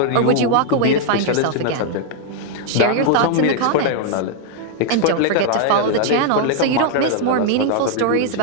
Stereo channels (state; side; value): different; both; correlation 0.00